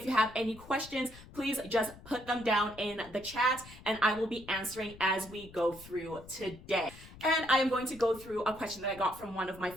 you have any questions, please just put them down in the chat and I will be answering as we go through today. And I am going to go through a question that I got from one of my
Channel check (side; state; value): left; noise; rumble, 19 dB below the sound